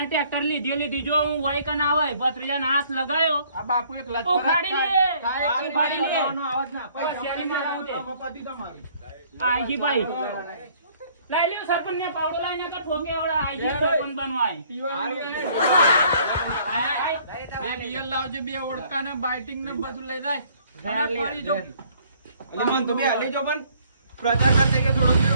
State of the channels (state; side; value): inverted; both; correlation -0.60